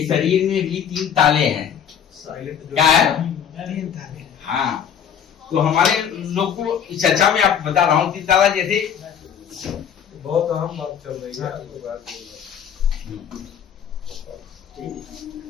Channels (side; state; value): right; quieter; 8.3 dB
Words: शरीर में भी 3 ताले हैं। क्या है? हाँ, तो हमारे लोग को इस चर्चा में आप बता रहा हूँ 3 ताला। जैसे बहुत अहम बात चल रही है,